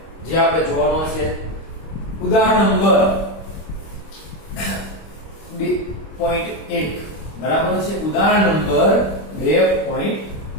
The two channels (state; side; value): late; right; 25 ms